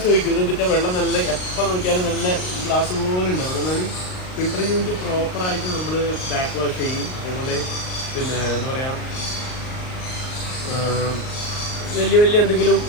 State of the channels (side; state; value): right; late; 38 ms